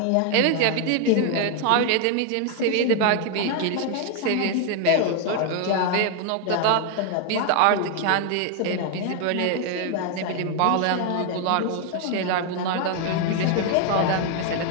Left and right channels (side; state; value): both; different; correlation 0.00